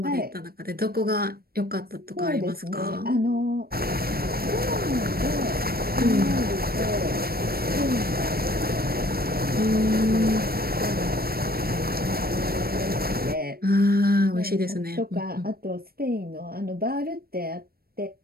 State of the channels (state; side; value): late; left; 0.44 ms